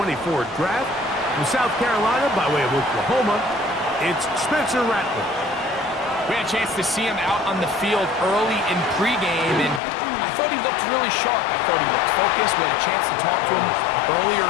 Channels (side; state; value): right; drops out; at 9.8 s